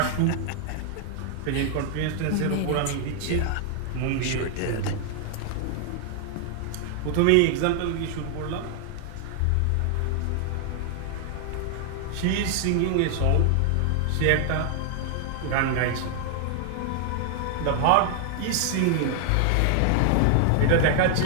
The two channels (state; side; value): different; both; correlation 0.00